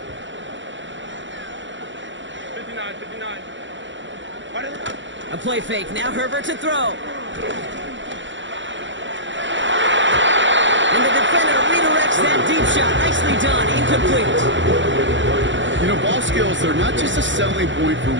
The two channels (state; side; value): late; left; 0.54 ms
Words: A play fake. Now Herbert to throw. And the defender redirects that deep shot. Nicely done. Incomplete. You know, ball skills, they're not just a selling point for